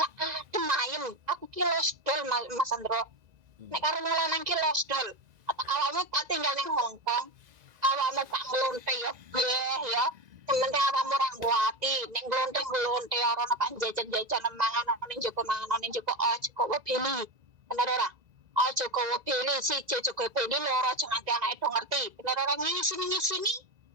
adem ayem. Aku ki losdol Mas Andro. Nek karo lanang ki losdol. Awalnya tak tinggal neng Hong Kong. Awalnya tak ngelonte ya ya. Sementara awakmu ora nguati, ning glonte-glonte ora ana pak jajan-jajan mangan ning Joko Joko beli. Bener ora? Aja kowe beli siji Joko beli loro aja nganti anake do ngerti. Bener ora ngisi-ngisi.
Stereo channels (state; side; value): late; left; 2.0 ms